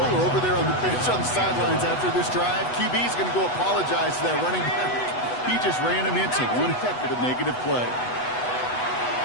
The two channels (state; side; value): late; right; 8.1 ms